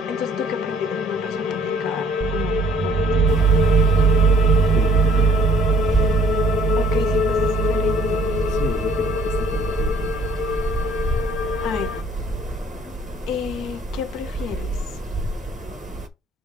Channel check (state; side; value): normal; both; correlation 0.59